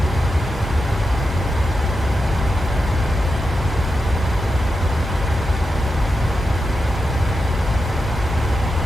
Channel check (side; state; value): both; normal; correlation 0.88